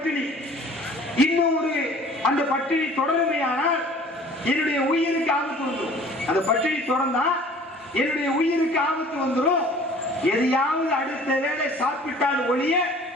இன்னும் ஒரு அந்த பட்டினி தொடருமையானால் என்னுடைய உயிருக்கு ஆபத்து வந்துடும். அந்த பட்டினி தொடர்ந்தா என்னுடைய உயிருக்கு ஆபத்து வந்துடும். எதையாவது அடுத்த வேளை சாப்பிட்டால் ஒழிய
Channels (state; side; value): normal; both; correlation 0.49